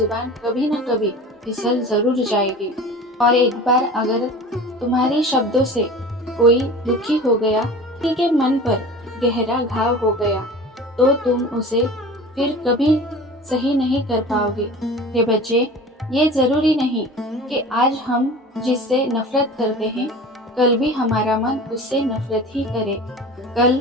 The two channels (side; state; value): both; normal; correlation 0.39